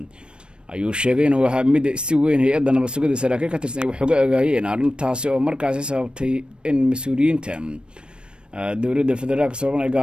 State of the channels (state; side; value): late; left; 0.055 ms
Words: ayuu sheegay inuu ahaa mid si weyn hay'adda nabadgelyada saraakiil ka tirsan ay wax uga ogaayeen arrintaasi oo markaasi sababtay in mas-uuliyiinta dowladda federaalka Soomaaliya